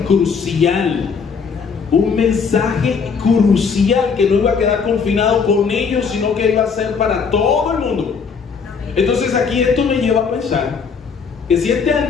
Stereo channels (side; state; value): right; quieter; 5.7 dB